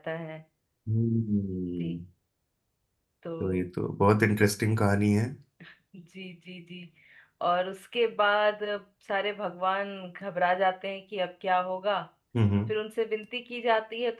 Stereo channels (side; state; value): both; identical; correlation 1.00